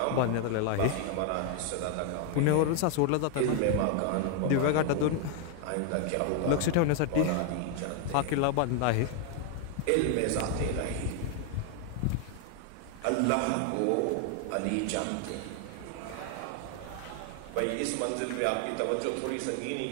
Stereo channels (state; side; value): different; both; correlation 0.00